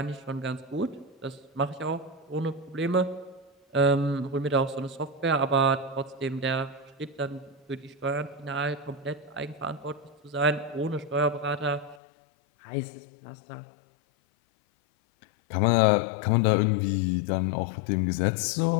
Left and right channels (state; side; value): drops out; right; at 12.0 s